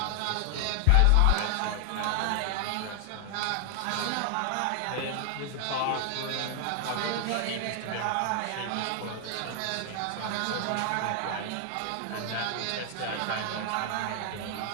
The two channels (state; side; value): different; both; correlation 0.00